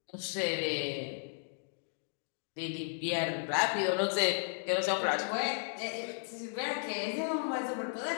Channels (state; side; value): silent; right; digital silence